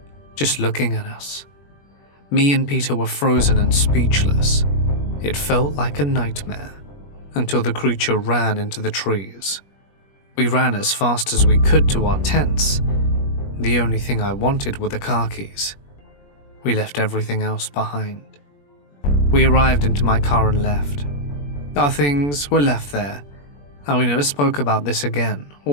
just looking at us. Me and Peter were frozen and speechless. It felt like a nightmare until the creature ran into the trees. We ran as fast as we could to our tents. The only thing I wanted were the car keys. We left everything else behind. We arrived into my car and left. Our things were left there, and we never spoke about this again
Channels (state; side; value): late; right; 21 ms